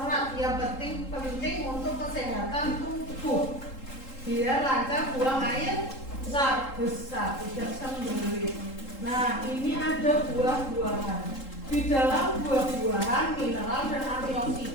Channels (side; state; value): right; late; 3.8 ms